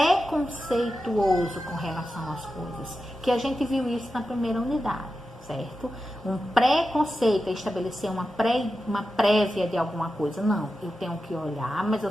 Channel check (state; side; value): normal; both; correlation 0.91